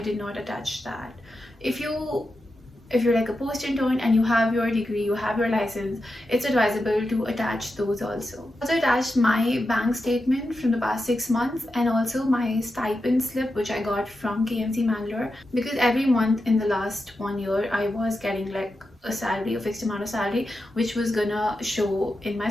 did not attach that. If you're like a post-intern and you have your degree, you have your license, it's advisable to attach those also. I also attached my bank statement from the past 6 months, and also my stipend slip which I got from KMC Mangalore, because every month in the last 1 year I was getting like a salary, a fixed amount of salary, which was gonna show in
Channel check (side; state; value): both; normal; correlation 0.89